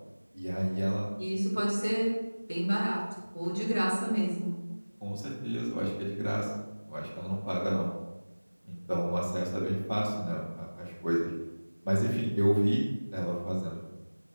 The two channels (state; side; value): inverted; both; correlation -1.00